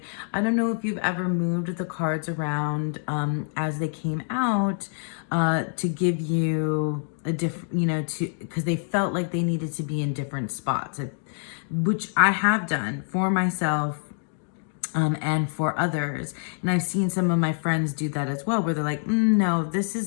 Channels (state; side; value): silent; right; 61 dB below the other